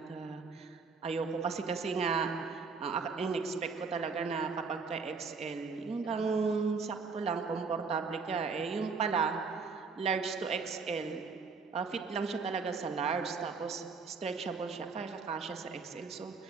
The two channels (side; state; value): left; quieter; 4.8 dB